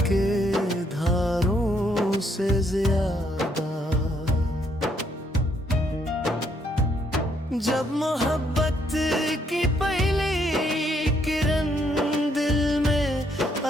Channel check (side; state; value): both; normal; correlation 0.71